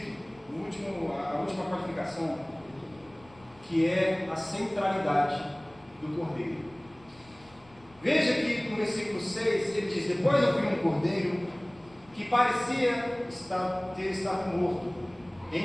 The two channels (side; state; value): left; noise; rumble, 27 dB below the sound